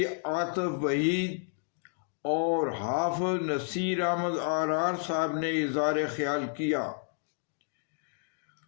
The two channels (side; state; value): right; silent; 57 dB below the other